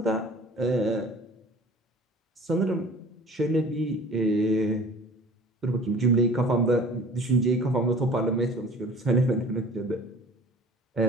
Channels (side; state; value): both; normal; correlation 0.46